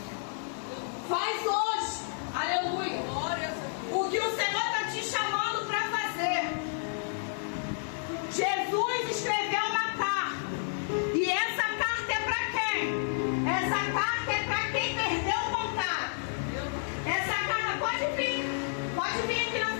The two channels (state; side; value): silent; right; 57 dB below the other